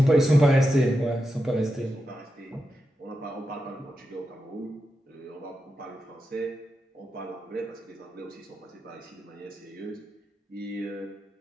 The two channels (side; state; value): both; normal; correlation 0.88